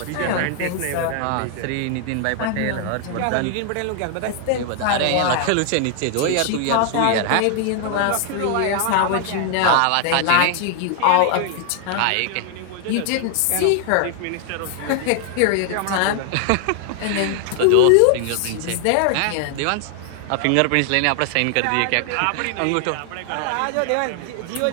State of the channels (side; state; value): both; different; correlation 0.00